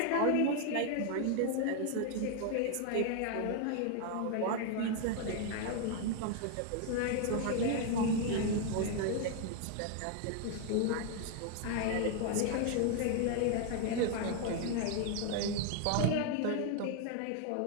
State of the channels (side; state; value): both; different; correlation 0.00